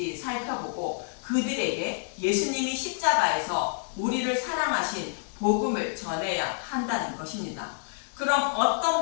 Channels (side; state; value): right; silent; digital silence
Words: 살펴보고 그들에게 예수님이 십자가에서 우리를 사랑하신 복음을 전해야 한다는 것입니다. 그럼 어떤